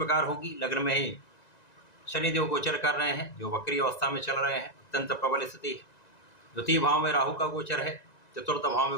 होगी। लग्न में ही शनिदेव गोचर कर रहे हैं जो वक्री अवस्था में चल रहे हैं, अत्यंत प्रबल स्थिति है। द्वितीय भाव में राहु का गोचर है। चतुर्थ भाव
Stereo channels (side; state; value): right; late; 1.9 ms